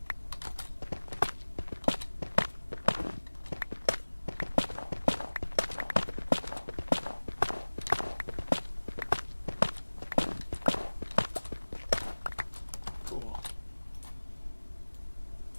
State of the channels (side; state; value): both; inverted; correlation -1.00